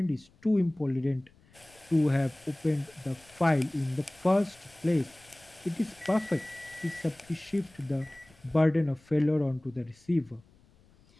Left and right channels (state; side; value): noise; left; rumble, 29 dB below the sound